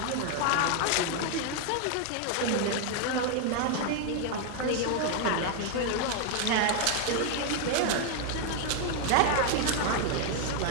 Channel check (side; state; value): both; different; correlation 0.01